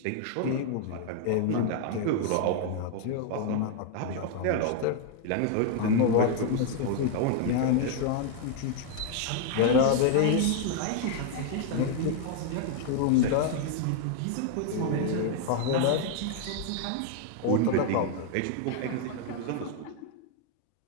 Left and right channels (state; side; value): different; both; correlation 0.00